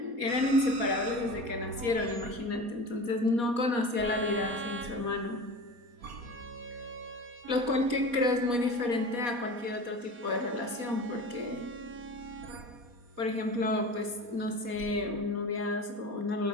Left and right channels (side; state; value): left; late; 4.2 ms